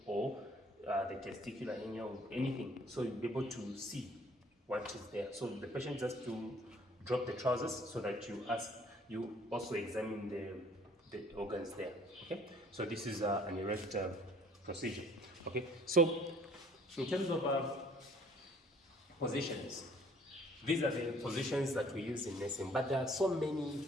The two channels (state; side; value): normal; both; correlation 0.56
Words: or the testicular hernia or anything. So you'll be able to see what is there. So the patient just to drop the trousers so that you also examine the organs there. Okay. So this is an erect procedure. Okay, so in terms of positions, these are the positions that we use in nursing, but there are so